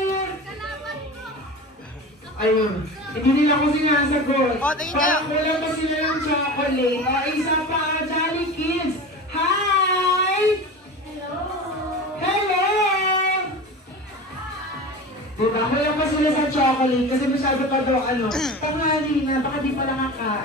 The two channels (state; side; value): normal; both; correlation 0.31